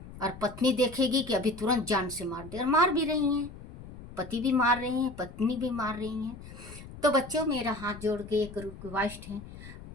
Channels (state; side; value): noise; left; rumble, 15 dB below the sound